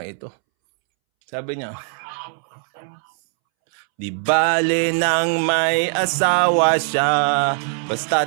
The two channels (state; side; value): silent; left; 65 dB below the other